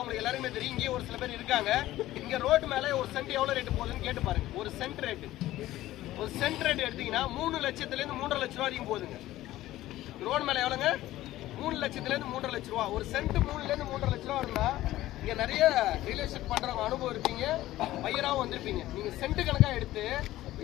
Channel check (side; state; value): right; quieter; 15.4 dB